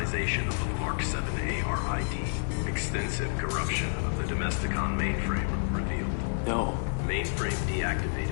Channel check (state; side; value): silent; right; digital silence